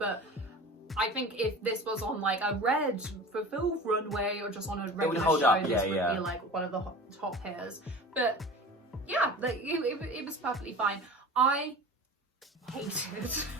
I think if this was on like a red fulfilled runway or just on a regular show, this would be like one of the top hairs. But yeah, like, it was perfectly fine. I hated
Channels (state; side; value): normal; both; correlation 0.37